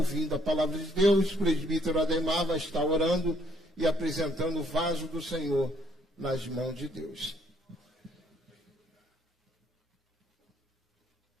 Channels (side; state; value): both; normal; correlation 0.67